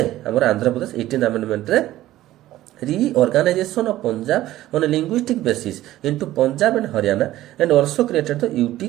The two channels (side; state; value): left; quieter; 14.9 dB